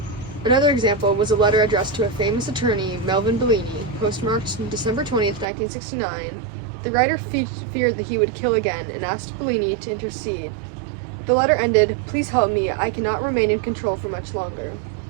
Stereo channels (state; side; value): drops out; left; at 5.5 s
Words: Another example was a letter addressed to a famous attorney, Melvin Bellini, postmarked December 20th, 1969. The writer feared that he would kill again and asked Bellini to intercede. The letter ended, "Please help me, I cannot remain in control for much longer."